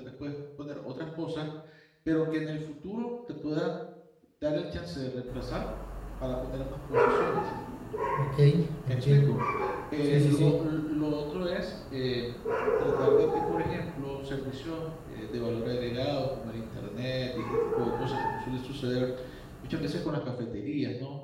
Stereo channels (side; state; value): both; identical; correlation 1.00